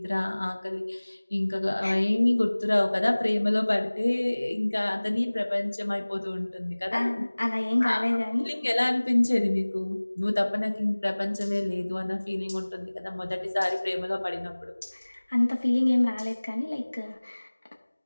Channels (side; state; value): both; inverted; correlation -1.00